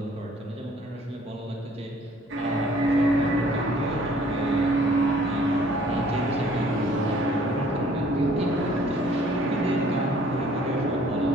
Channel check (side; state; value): both; normal; correlation 0.57